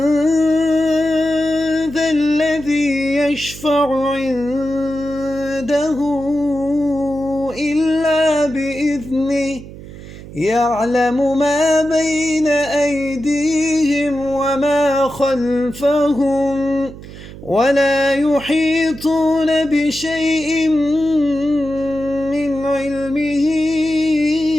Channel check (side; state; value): right; noise; hum, 15 dB below the sound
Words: ذا الذي يشفع عنده إلا بإذنه يعلم ما بين أيديهم وما خلفهم ولا يحيطون بشيء من علمه